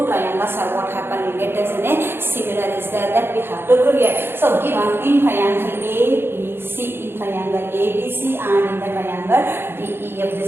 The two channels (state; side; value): late; left; 0.11 ms